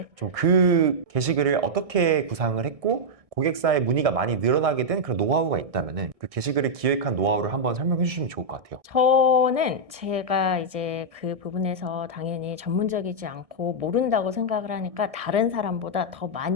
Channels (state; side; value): late; left; 1.6 ms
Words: 좀 그 게시글을 어떻게 구상을 했고, 고객사의 문의가 많이 늘어나게 된 그런 노하우가 있다면은 그 게시글을 기획한 노하우를 한번 설명해 주시면 좋을 것 같아요. 저는 제가 이제 그 부분에서 당연히 전문적이지 않고 모른다고 생각을 하니까 다른 사람보다 더